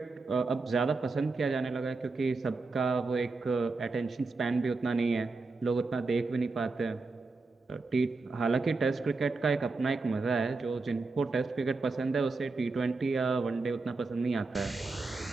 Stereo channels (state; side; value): quieter; left; 3.8 dB